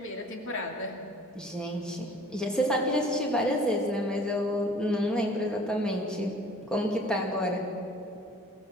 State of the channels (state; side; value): normal; both; correlation 0.50